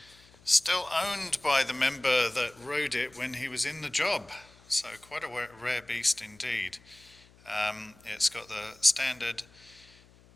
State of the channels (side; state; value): left; noise; hum, 26 dB below the sound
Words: Still owned by the member that rode it when he was in the job, so quite a rare beast indeed. It's got the standard